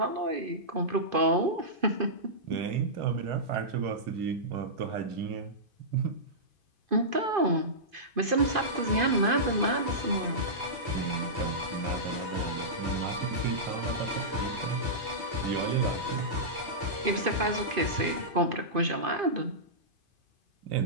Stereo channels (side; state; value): left; late; 2.5 ms